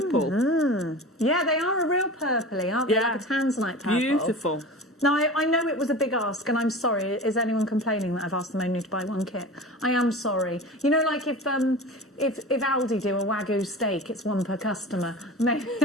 Mm-hmm. Yeah, they are a real purpley, aren't they? Like a tanzanite purple. Beautiful. Now, I know it was a big ask, and I'm sorry. Is anyone complaining that I've asked them only to buy one kit? I am sorry. You know, like if Aldi do a Wagyu steak, it's one per customer.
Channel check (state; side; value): normal; both; correlation 0.34